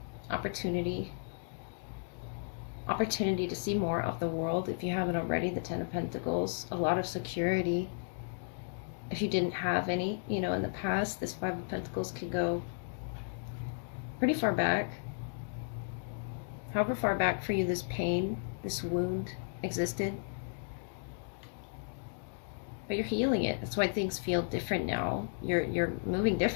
opportunity to see more of the world if you haven't already. The Ten of Pentacles, a lot of security. If you didn't have any, in the past, this Five of Pentacles could go pretty far back. However far back for you this pain, this wound existed. But you're healing it. That's why things feel different now. You're moving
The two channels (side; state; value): right; silent; digital silence